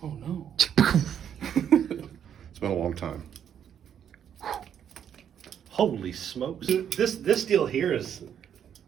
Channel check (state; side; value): quieter; left; 9.0 dB